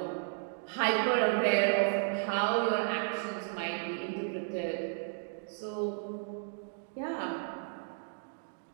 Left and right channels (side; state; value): left; silent; digital silence